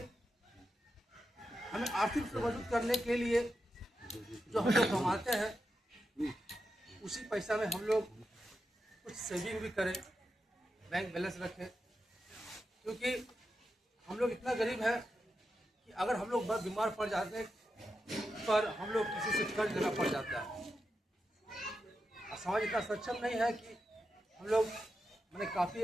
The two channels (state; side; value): normal; both; correlation 0.88